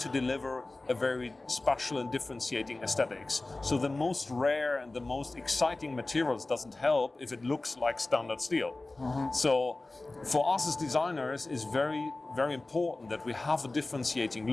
to deliver a very special and differentiating aesthetics. So the most rare and the most exciting materials doesn't help if it looks like standard steel. Mm-hmm. So for us as designers, it's very, very important that we have a differentiating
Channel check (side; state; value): right; quieter; 3.1 dB